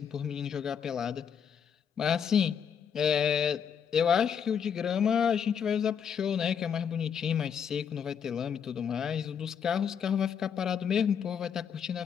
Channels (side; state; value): right; quieter; 7.6 dB